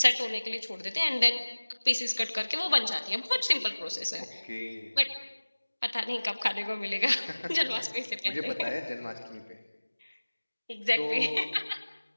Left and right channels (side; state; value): both; inverted; correlation -1.00